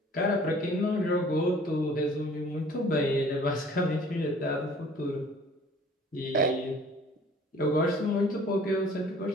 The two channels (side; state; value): both; normal; correlation 0.52